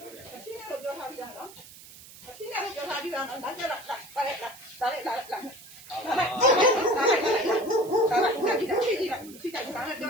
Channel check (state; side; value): noise; right; hiss, 18 dB below the sound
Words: ရှင်းတယ်လို့ပြောထားတာနော်။ရှင်းတယ်လို့ပြောထားတာနော်။လာကြလား။လာလိုက်။လာလိုက်။လာလိုက်။လာလိုက်။ဒီကဘာလဲပြော